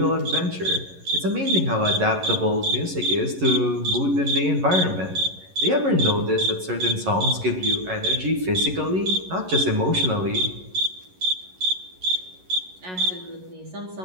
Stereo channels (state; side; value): late; left; 11 ms